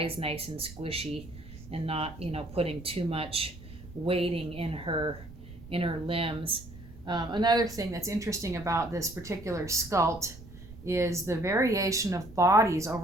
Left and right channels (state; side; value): noise; right; rumble, 17 dB below the sound